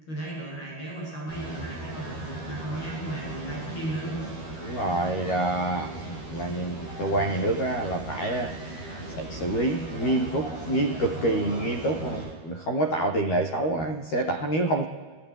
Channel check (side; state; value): right; late; 13 ms